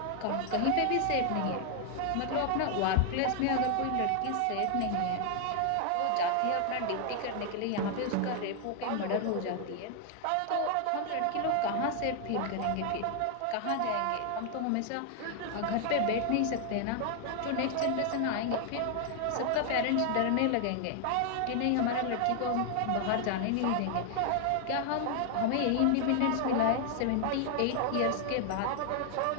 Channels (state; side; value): different; both; correlation 0.00